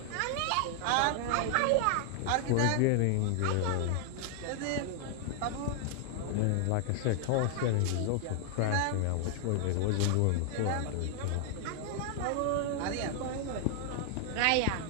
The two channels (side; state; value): both; different; correlation 0.00